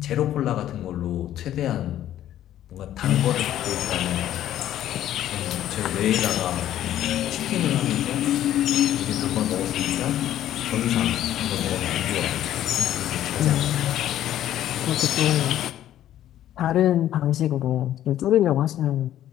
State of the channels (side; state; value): right; quieter; 12.2 dB